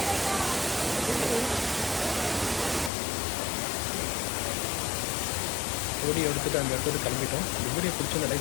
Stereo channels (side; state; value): right; drops out; at 2.9 s